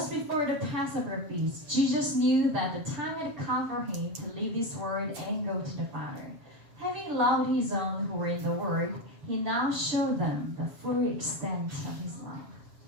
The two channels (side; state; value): left; late; 6.9 ms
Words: before the Passover feast. Jesus knew that the time had come for him to leave this world and go to the Father. Having loved his own who were in the world, he now showed them the full extent of his love.